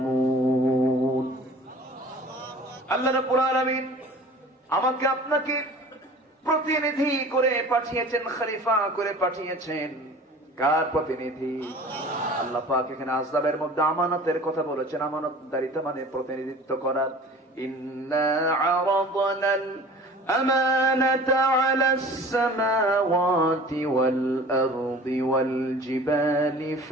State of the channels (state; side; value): normal; both; correlation 0.43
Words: আল্লাহ রাব্বুল আলামিন আমাকে আপনাকে প্রতিনিধি করে পাঠিয়েছেন, খলিফা করে পাঠিয়েছেন। কার প্রতিনিধি? আল্লাহ পাক এখানে আযাবের মধ্যে আমানতের কথা বলেছেন। আমানতদারিতা মানে প্রতিনিধিত্ব করা। ইন্না আরাদনাল أمانة على السماوات والأرض والجبال